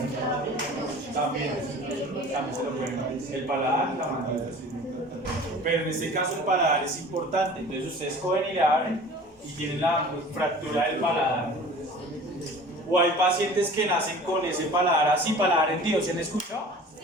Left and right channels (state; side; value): normal; both; correlation 0.43